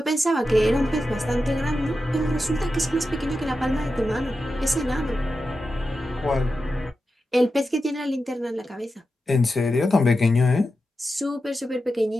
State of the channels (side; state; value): both; normal; correlation 0.90